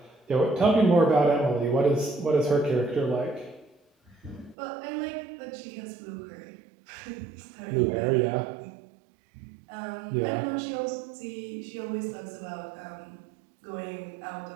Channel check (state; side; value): drops out; left; at 4.5 s